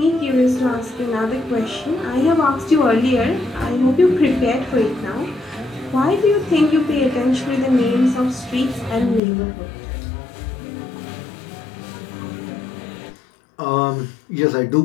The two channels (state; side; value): drops out; right; at 9.2 s